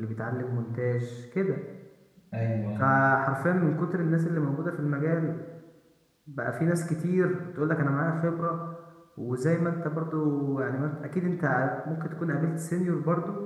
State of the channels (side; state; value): both; identical; correlation 1.00